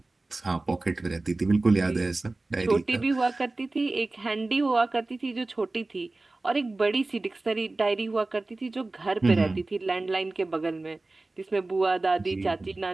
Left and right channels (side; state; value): left; quieter; 3.1 dB